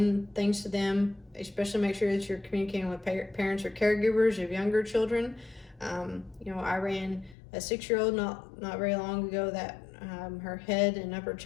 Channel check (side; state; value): right; drops out; at 7.4 s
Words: things to them, especially make sure that you're communicating with parents or caregivers of younger children. I ran a 6-year-old not very long ago that her head and upper